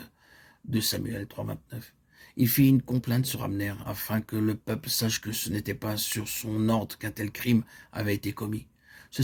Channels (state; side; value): identical; both; correlation 1.00